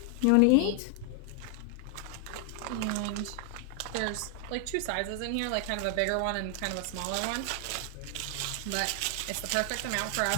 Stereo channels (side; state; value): both; different; correlation 0.00